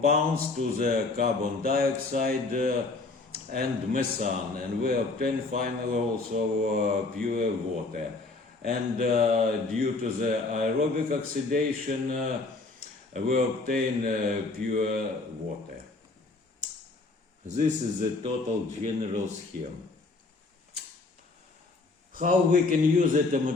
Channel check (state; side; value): quieter; right; 3.6 dB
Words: to the carbon dioxide and methane, and we obtain finally also pure water. And due to the aerobic oxidation, we obtain pure water. This is the total general scheme. How we can use the